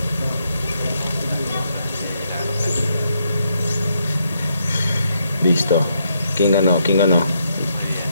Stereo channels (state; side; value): inverted; both; correlation -0.77